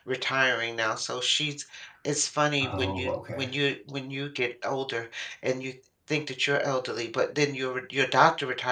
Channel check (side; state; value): both; identical; correlation 1.00